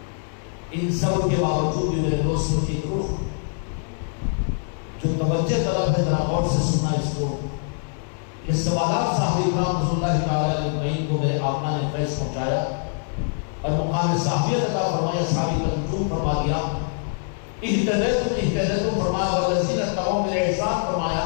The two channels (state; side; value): silent; right; digital silence